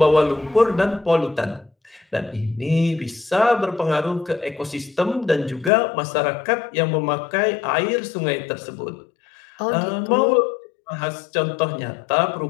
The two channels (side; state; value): right; drops out; at 5.7 s